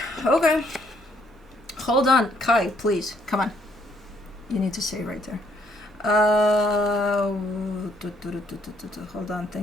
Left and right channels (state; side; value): normal; both; correlation 0.68